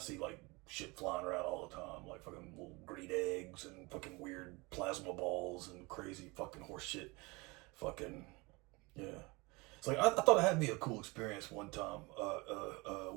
like shit flying around all the time, like fucking little green eggs and fucking weird plasma balls and crazy fucking horse shit. Fucking yeah. It's like I thought it had to be a cool experience one time.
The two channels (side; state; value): left; quieter; 25.5 dB